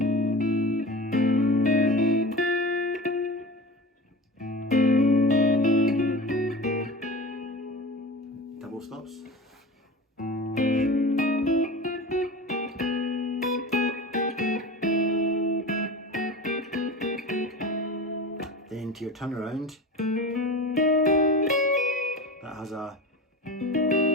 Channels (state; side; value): normal; both; correlation 0.31